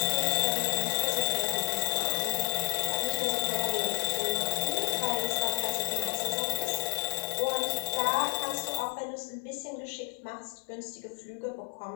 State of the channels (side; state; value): right; silent; digital silence